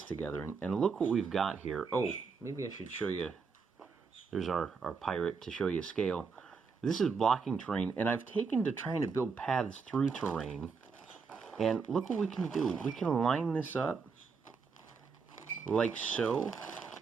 together, and look what we've got here. Oh, maybe I should show you. There's our pirate to show you scale. This is blocking terrain, and I've taken to trying to build paths through terrain. And look what we can do. We can line this up like so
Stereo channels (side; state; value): left; quieter; 5.2 dB